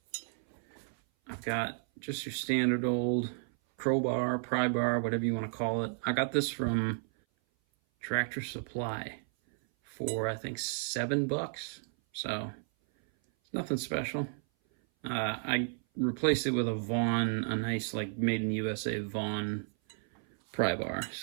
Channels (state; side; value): silent; left; 56 dB below the other